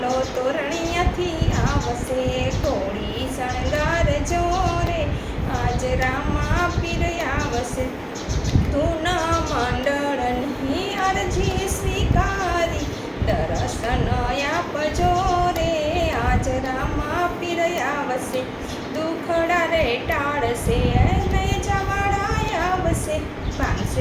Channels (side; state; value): both; identical; correlation 1.00